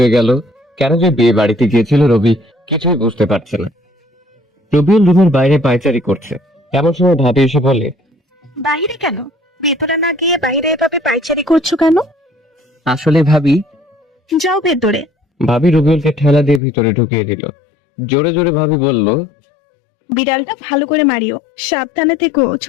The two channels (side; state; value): right; drops out; at 16.6 s